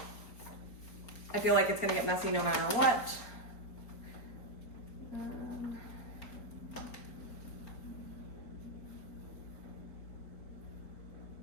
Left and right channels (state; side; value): late; right; 4.5 ms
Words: I feel like it's gonna get messy no matter what.